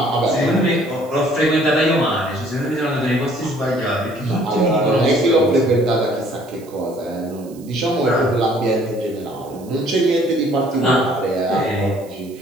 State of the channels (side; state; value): right; noise; hiss, 25 dB below the sound